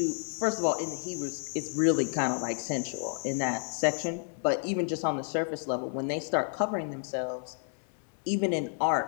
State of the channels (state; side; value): silent; right; 57 dB below the other